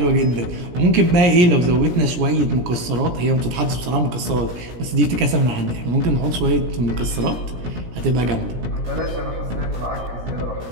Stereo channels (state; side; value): late; left; 17 ms